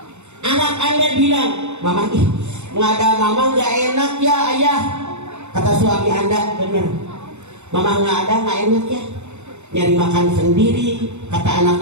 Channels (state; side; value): late; left; 0.83 ms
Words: Anak Anda bilang, "Mama nggak ada mama nggak enak ya ayah." Kata suami Anda, benar. Mama nggak ada nggak enak ya. Nyari makan sendiri, kata